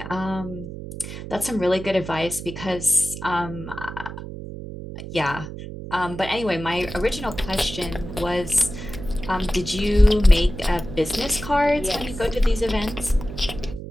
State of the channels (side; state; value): right; noise; hum, 10 dB below the sound